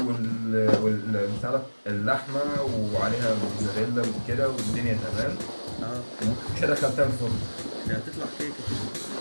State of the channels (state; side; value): inverted; both; correlation -1.00